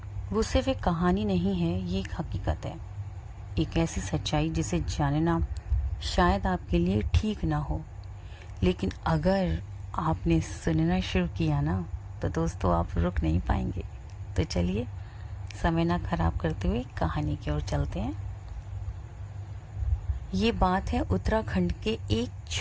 वो सिर्फ एक कहानी नहीं है, ये एक हकीकत है, एक ऐसी सच्चाई जिसे जानना शायद आपके लिए ठीक ना हो, लेकिन अगर आपने सुनना शुरू किया ना तो दोस्तों आप रुक नहीं पाएंगे। तो चलिए, समय ना खराब करते हुए कहानी की ओर चलते हैं। ये बात है उत्तराखंड के एक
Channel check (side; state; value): both; identical; correlation 1.00